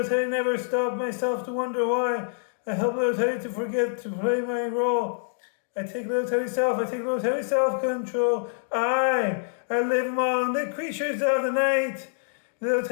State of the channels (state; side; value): silent; right; digital silence